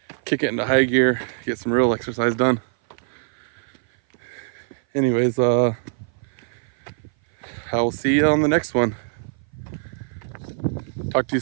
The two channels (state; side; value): silent; left; 58 dB below the other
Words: kick it into high gear, get some real exercise done. Anyways, I will see you on the next one. Talk to you